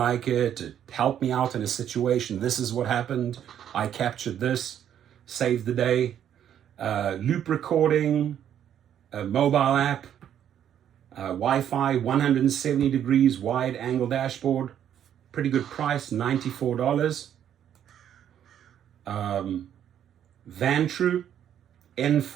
it, it helped me out in a situation, this is what happened, I captured this, saved the day. Loop recording, a mobile app, Wi-Fi, 170 degrees wide angle dashboard, pretty good price, $94. Vantru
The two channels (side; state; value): left; quieter; 9.9 dB